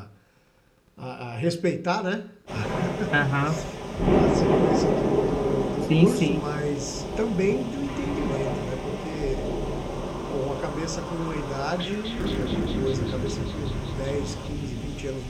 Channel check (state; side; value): identical; both; correlation 1.00